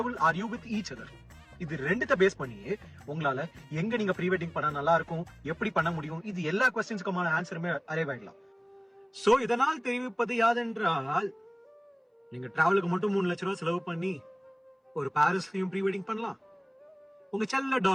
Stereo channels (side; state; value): both; identical; correlation 1.00